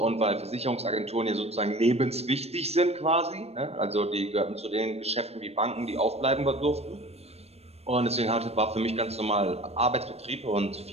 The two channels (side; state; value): left; late; 0.30 ms